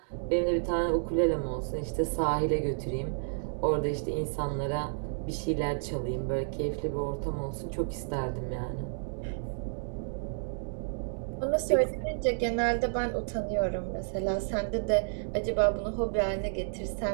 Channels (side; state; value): left; silent; digital silence